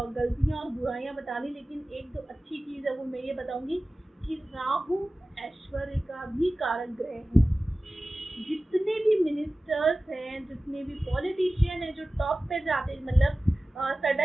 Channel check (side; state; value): both; normal; correlation 0.96